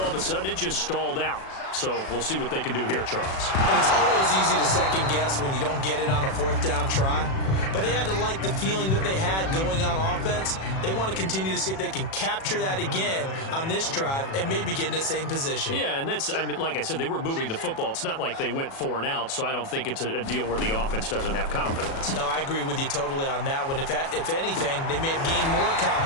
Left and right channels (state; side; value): late; right; 37 ms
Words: of a sudden it just stalled out. So we'll see what they can do here, Charles. And it's always easy to second guess when you don't get it on a fourth down try. But they had to like the feeling that they had going on offense. They want to continue to see if they can capture that again on this drive and maybe get in the same position. Yeah, and that's, I mean, like I said, they were moving the football. It's not like they went 4 and out, so I don't think it's a deal where the offense doesn't have confidence. No, I agree with you totally on that one. If anything, they may have gained more